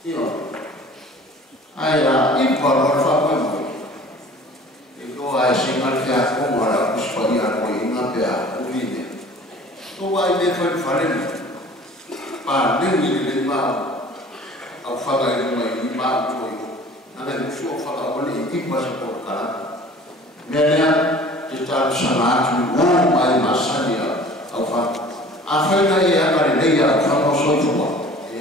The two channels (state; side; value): normal; both; correlation 0.47